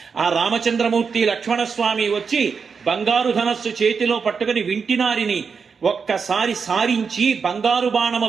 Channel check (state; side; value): quieter; left; 5.7 dB